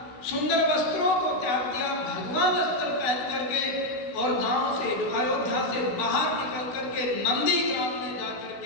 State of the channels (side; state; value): right; late; 16 ms